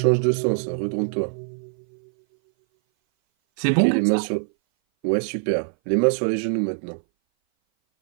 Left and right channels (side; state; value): left; silent; 59 dB below the other